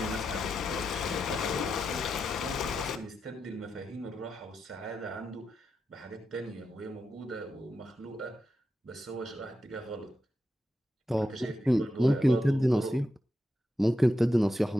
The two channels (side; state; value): both; normal; correlation 0.88